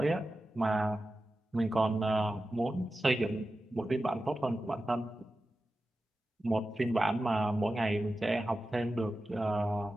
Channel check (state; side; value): normal; both; correlation 0.93